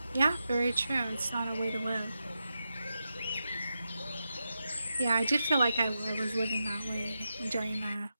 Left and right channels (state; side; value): inverted; both; correlation -0.89